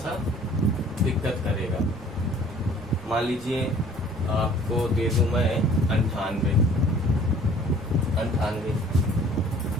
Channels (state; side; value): noise; left; rumble, 20 dB below the sound